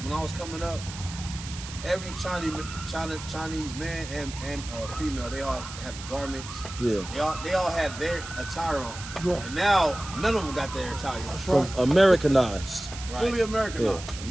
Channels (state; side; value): noise; right; hiss, 12 dB below the sound